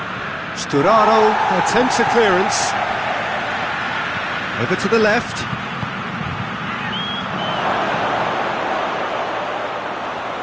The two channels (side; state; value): both; identical; correlation 1.00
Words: Sturaro attempts a clearance. Over to the left.